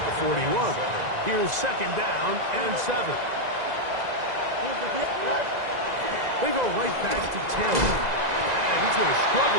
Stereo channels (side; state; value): left; late; 2.0 ms